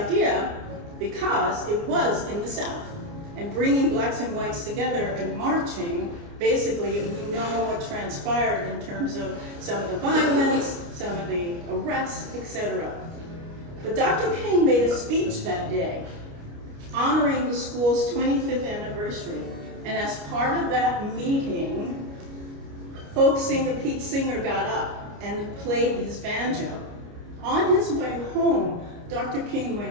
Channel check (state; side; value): late; left; 29 ms